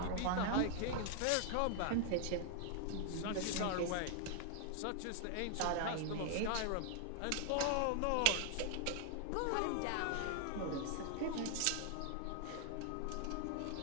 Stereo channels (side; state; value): both; different; correlation 0.00